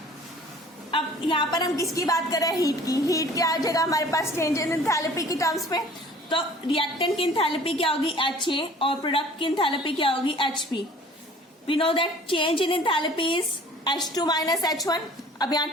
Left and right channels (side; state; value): both; normal; correlation 0.50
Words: अब यहाँ पर हम किसकी बात कर रहे हैं, हीट की। हीट क्या आ जाएगा हमारे पास, चेंज इन एंथैल्पी की टर्म्स पे, तो रिएक्टेंट की एंथैल्पी क्या होगी, HA, और प्रोडक्ट की एंथैल्पी क्या होगी, HP। We know that change in enthalpy is H2 minus H1। अब यहाँ